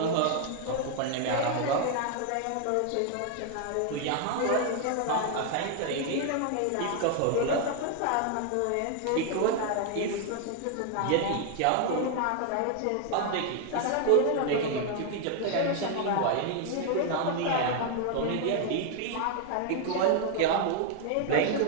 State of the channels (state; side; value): different; both; correlation 0.01